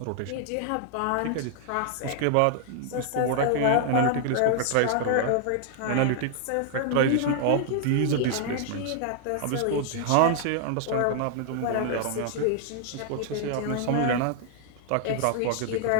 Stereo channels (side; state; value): both; different; correlation -0.01